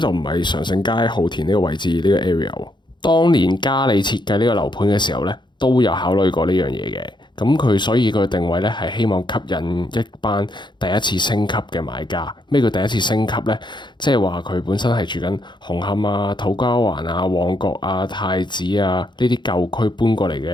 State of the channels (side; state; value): right; late; 0.22 ms